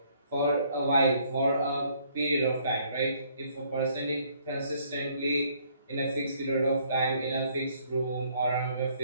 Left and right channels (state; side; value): inverted; both; correlation -0.65